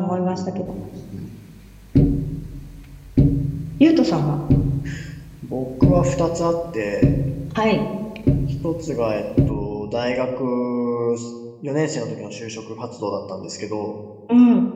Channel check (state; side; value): identical; both; correlation 1.00